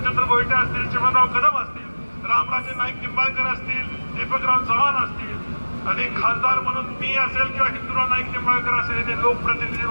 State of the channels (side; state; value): both; inverted; correlation -1.00